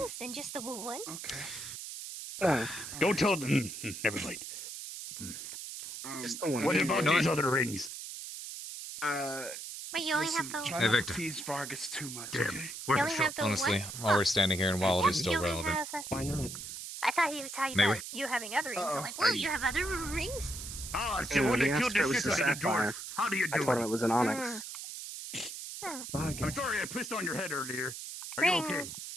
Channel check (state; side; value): noise; right; hiss, 9 dB below the sound